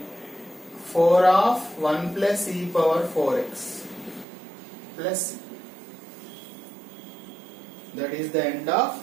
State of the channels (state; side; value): drops out; left; at 4.2 s